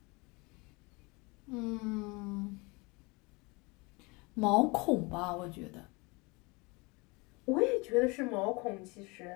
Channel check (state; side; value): quieter; right; 26.9 dB